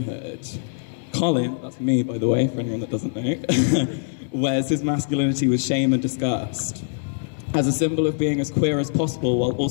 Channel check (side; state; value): right; silent; 61 dB below the other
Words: Colin, that's me by the way, for anyone that doesn't know, wears his masculinity with shame and disgust, as a symbol of being as queer as possible while